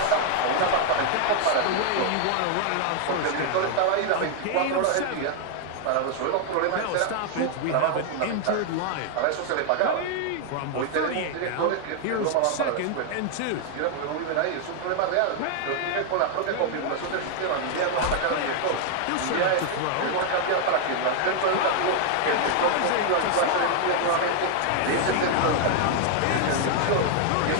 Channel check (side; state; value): both; different; correlation 0.00